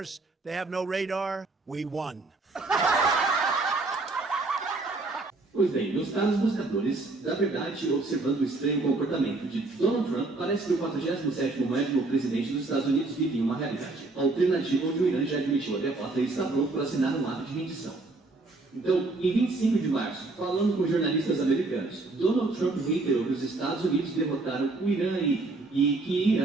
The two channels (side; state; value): left; quieter; 3.3 dB